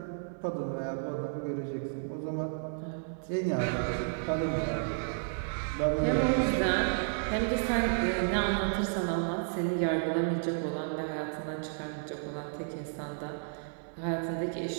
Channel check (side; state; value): left; silent; digital silence